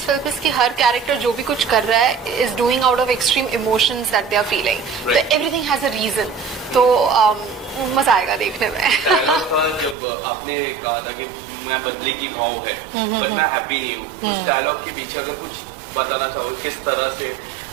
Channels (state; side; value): drops out; left; at 10.0 s